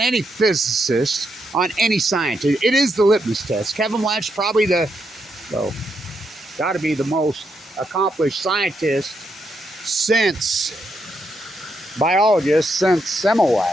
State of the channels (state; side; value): normal; both; correlation 0.80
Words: any physicist, on any scientist. It is the litmus test. Kevin Blanch, probably got to be the most accomplished scientist since